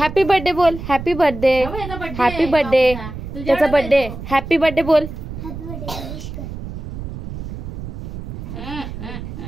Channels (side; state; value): right; noise; rumble, 9 dB below the sound